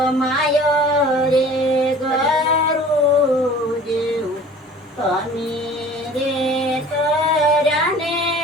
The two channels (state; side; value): normal; both; correlation 0.46